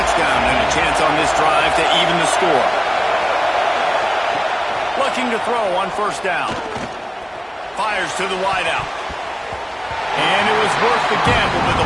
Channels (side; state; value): both; identical; correlation 1.00